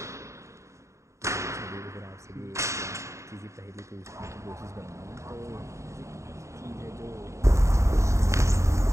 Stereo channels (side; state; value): left; late; 0.14 ms